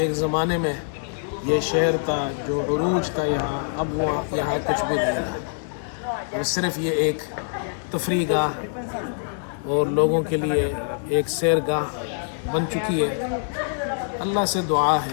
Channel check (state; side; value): silent; right; 62 dB below the other